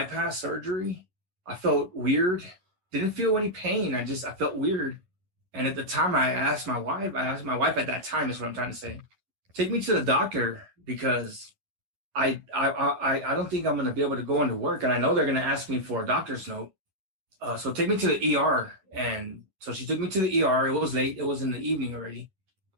surgery. I felt weird. Didn't feel any pain. I felt weird. And at the time, I asked my wife at that time, is what I'm trying to say, take me to the doctor because I don't think I'm going to be able to go into work. And I know they're going to ask me for a doctor's note. So take me to the ER. And so she took me to the ER. It was late. It was in the evening already.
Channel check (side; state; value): left; late; 11 ms